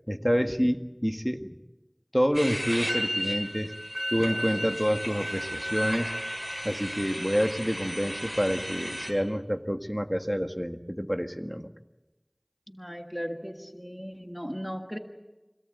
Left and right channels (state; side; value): identical; both; correlation 1.00